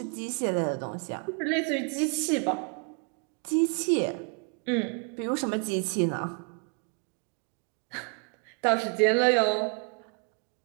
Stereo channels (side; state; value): left; quieter; 37.9 dB